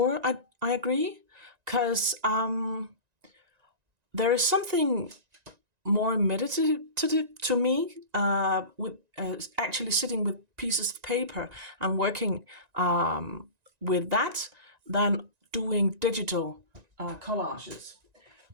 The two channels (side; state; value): left; late; 1.9 ms